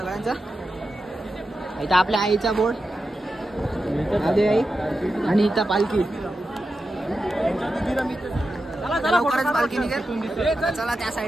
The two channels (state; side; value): normal; both; correlation 0.90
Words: इथं आपल्या आईचा बोर्ड, आधी आई, आणि इथं पालखी. लवकरच पालखी निघेल. चला त्या